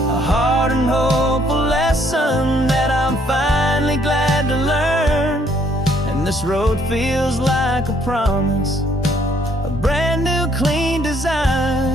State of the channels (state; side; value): normal; both; correlation 0.66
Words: hard and hopeful lesson that I'm finally glad to learn. And this road feels like a promise, a brand new clean